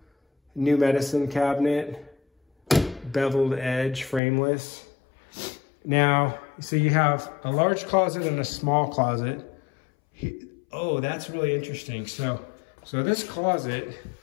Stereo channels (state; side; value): drops out; right; at 4.2 s